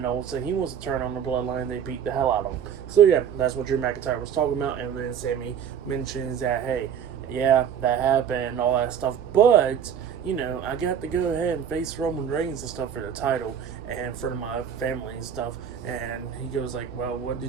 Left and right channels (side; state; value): left; quieter; 8.3 dB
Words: all of a sudden he wants to turn on the bloodline and they beat the hell out of him. So yeah, that's what Drew McIntyre was talking about. And then Sami mentions that, hey, yeah, that happened and all that stuff, but I got to go ahead and face Roman Reigns and stuff for the title and in front of my family and stuff. And he goes like, well, what